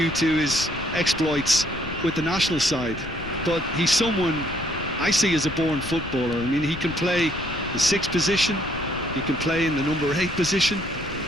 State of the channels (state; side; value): noise; left; rumble, 11 dB below the sound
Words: to his exploits with the national side. But he's someone I see as a born footballer. I mean, he can play the 6th position, he can play in the number 8 position,